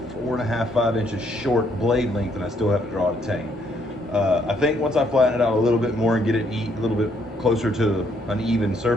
4.5, 5 inches short blade length, and I still have to draw it a tang. I think once I flatten it out a little bit more and get it a little bit closer to an even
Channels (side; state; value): both; normal; correlation 0.70